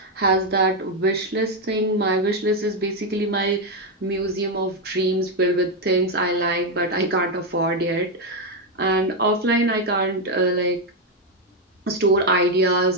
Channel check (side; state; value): both; normal; correlation 0.04